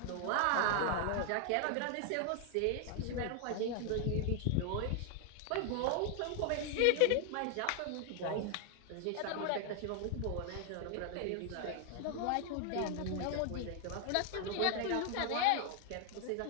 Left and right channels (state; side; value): different; both; correlation 0.00